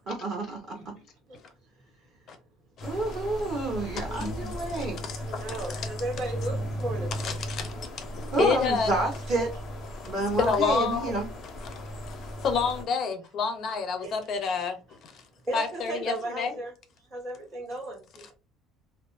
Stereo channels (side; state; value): both; normal; correlation 0.62